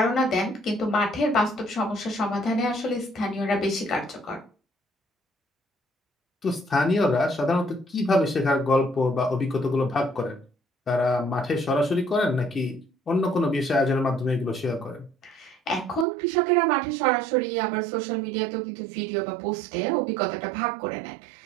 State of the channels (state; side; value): drops out; left; at 16.1 s